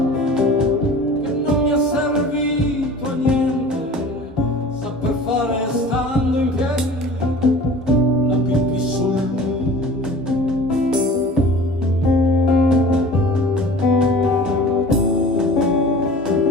che non mi è servito a niente saper fare stando in piedi la pipì sul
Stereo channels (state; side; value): normal; both; correlation 0.42